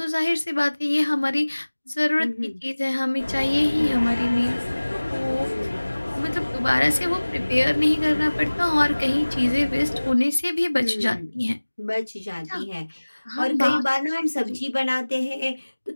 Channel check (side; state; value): both; inverted; correlation -1.00